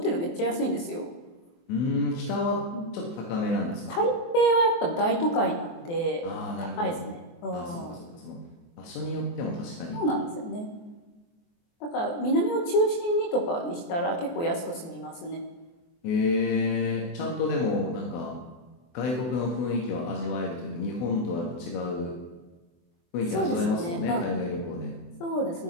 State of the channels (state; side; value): late; right; 24 ms